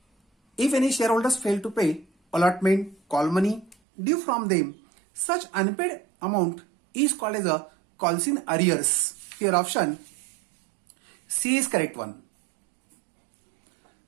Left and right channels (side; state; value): left; drops out; at 3.8 s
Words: any shareholders fail to pay allotment, call money due from them, such unpaid amount is called as a calls in arrears. Here option C is correct one.